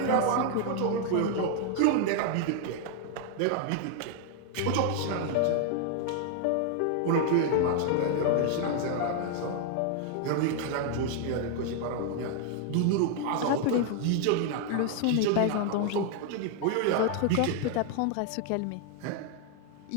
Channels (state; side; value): different; both; correlation 0.00